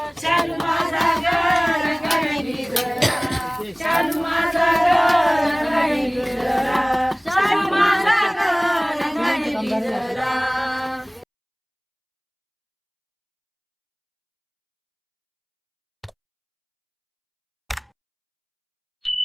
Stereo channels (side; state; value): both; identical; correlation 1.00